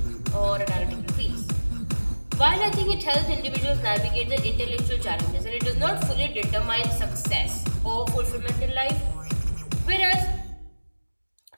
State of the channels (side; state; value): both; inverted; correlation -1.00